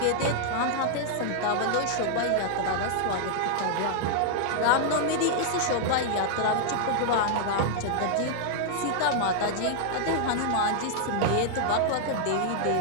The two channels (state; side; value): different; both; correlation -0.01